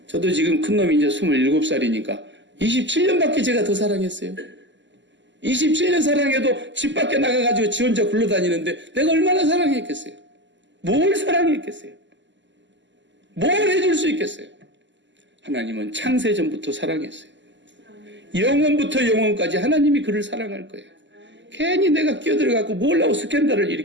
저도 지금 큰 놈이 이제 27살이니까 27년밖에 제가 더 사랑했어요. 27년 사랑해도 집 밖에 나가가지고 지 혼자 굴러다니는데 내가 얼마나 사랑했겠어요? 뭘 사랑했겠어요? 뭘 해줄 수 있겠어요? 하나님은 창세전부터 사랑했어요. 영원부터 영원까지 하나님이 그를 사랑할 거예요. 괜히 내가 끼어들어갖고 뭘 하고 스캔들을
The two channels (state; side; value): late; left; 0.53 ms